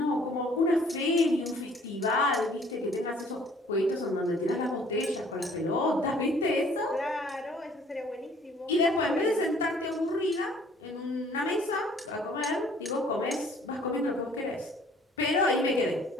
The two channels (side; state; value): both; normal; correlation 0.56